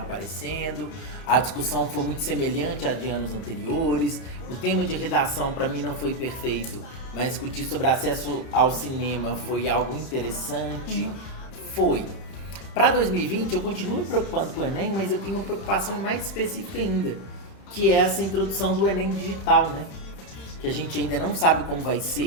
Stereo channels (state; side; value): late; right; 31 ms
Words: A discussão foi muito semelhante à de anos anteriores. O tema de redação para mim não foi perfeito, mas discutir sobre acesso ao cinema foi algo interessante. Foi. Para 2020 eu continuo me preocupando com o Enem, mas eu tenho uma preocupação mais específica ainda, que é essa introdução do Enem digital, né? Que a gente ainda não sabe como vai